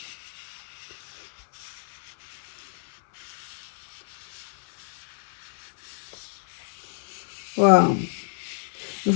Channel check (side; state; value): right; silent; 58 dB below the other